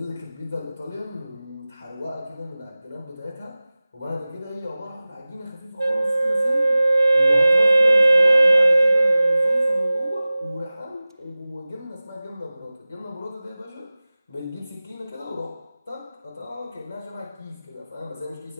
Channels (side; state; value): both; inverted; correlation -0.98